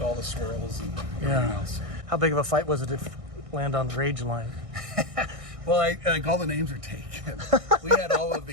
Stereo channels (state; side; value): late; left; 1.6 ms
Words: all the swirls and everything else. How big of a fight was it to land on the Rangeline? Well, like all the names are taken. We had all of